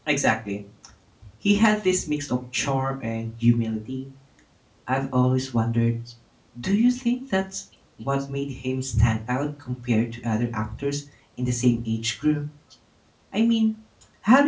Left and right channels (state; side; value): identical; both; correlation 1.00